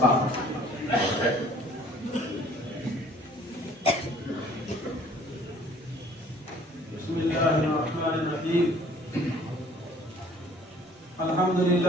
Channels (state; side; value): normal; both; correlation 0.55